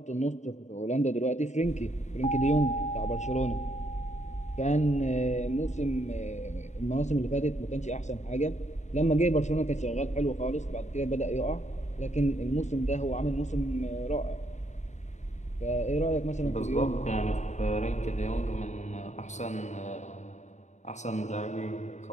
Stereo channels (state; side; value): late; right; 0.34 ms